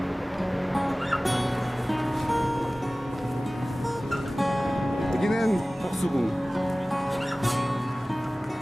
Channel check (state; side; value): normal; both; correlation 0.98